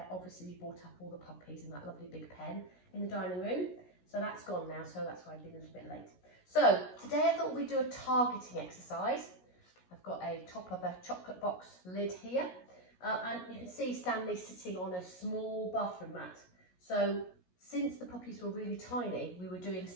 obviously we brought up all the puppies and that lovely big pen in the dining room. So that's gone now, so that's why I've been a little bit late. So today I thought we'd do a targeting exercise. I've got a top of a chocolate box lid here. And you can see Stanley sitting on a small bathroom mat. So since the puppies were really tiny, we were doing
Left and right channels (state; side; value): late; right; 17 ms